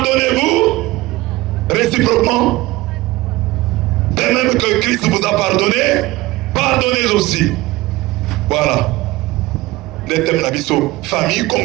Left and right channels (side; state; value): left; quieter; 19.4 dB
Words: réciproquement. De même que Christ vous a pardonné, pardonnez aussi. Voilà. Les thèmes de la vie sont famille